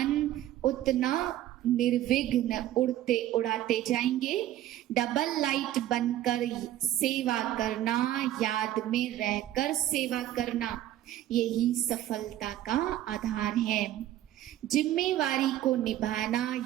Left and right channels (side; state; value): left; quieter; 13.2 dB